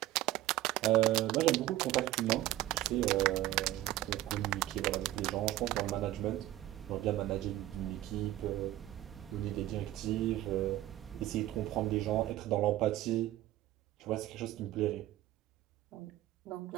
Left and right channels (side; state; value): left; quieter; 14.9 dB